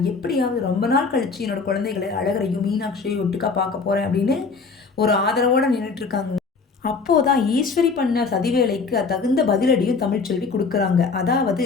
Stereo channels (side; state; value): right; quieter; 4.6 dB